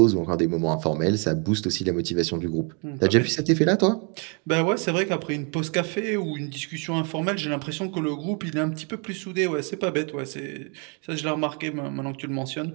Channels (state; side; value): quieter; left; 36.4 dB